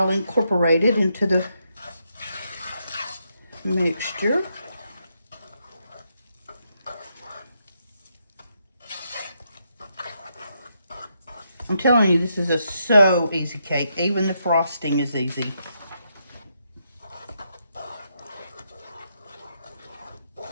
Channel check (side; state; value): both; inverted; correlation -0.80